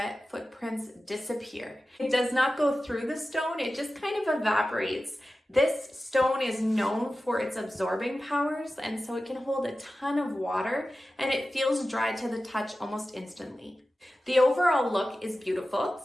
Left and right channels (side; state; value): both; normal; correlation 0.94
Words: footprints disappear. It does not go through the stone, it just kind of evaporates. This stone is known for its absorbing powers, and so it can hold a ton of water, and it feels dry to the touch almost instantly. The overall look is beautiful.